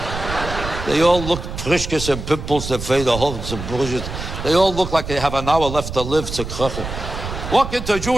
They all look prishkes and pimples, their face, the whole some bullshit. They all look like they have an hour left to live, zerkrachen. Walk into a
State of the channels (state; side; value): noise; right; rumble, 7 dB below the sound